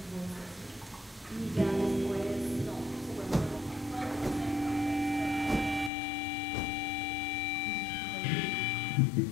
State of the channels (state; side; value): drops out; right; at 5.9 s